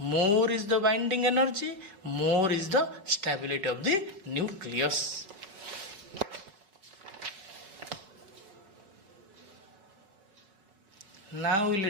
is the binding energy, more is the stability of the nucleus. Now we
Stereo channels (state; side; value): late; left; 5.0 ms